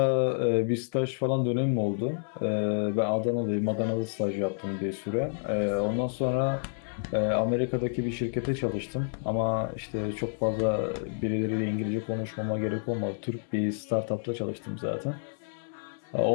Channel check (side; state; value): right; silent; 58 dB below the other